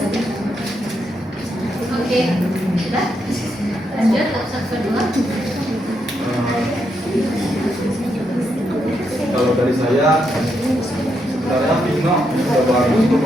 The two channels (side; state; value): both; normal; correlation 0.80